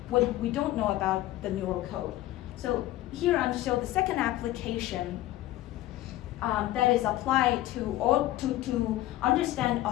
What if we don't know about the neural code? So here I'm showing the second application that is applied to understand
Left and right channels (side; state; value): right; quieter; 15.4 dB